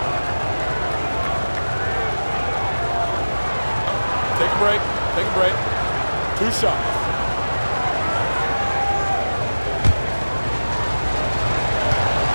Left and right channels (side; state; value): both; inverted; correlation -1.00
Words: Take a break. Take a break. 2 shots.